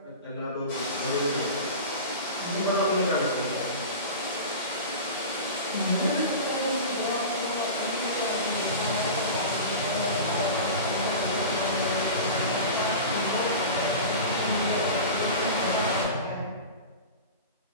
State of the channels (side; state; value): both; inverted; correlation -0.31